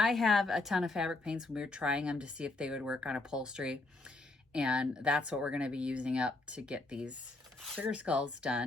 have a ton of fabric paints when we were trying them to see if they would work on upholstery. And that's what we're going to be using up to get these sugar skulls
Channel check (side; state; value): right; quieter; 3.0 dB